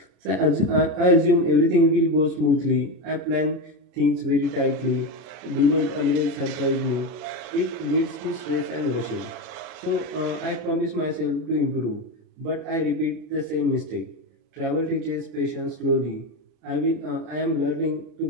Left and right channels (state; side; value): late; left; 33 ms